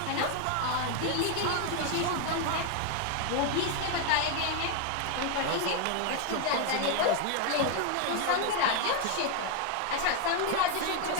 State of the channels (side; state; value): both; different; correlation 0.01